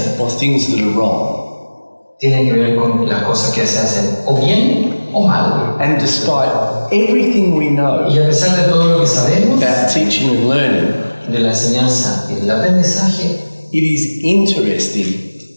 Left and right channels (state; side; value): inverted; both; correlation -1.00